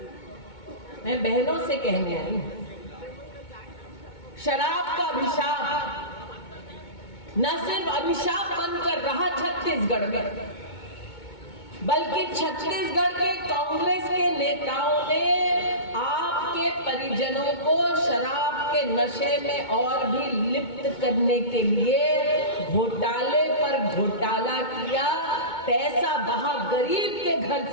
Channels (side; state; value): right; late; 2.2 ms